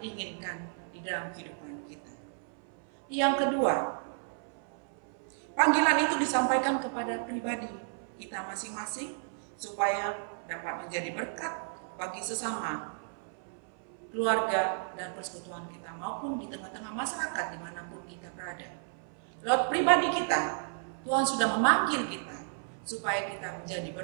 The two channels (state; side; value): silent; left; 56 dB below the other